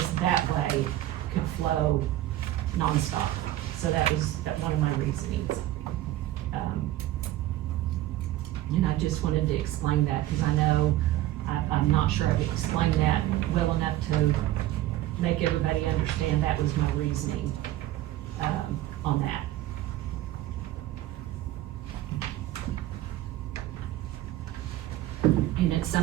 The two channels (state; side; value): quieter; left; 14.7 dB